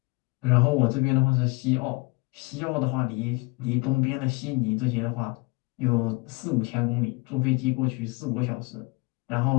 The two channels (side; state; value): right; quieter; 26.5 dB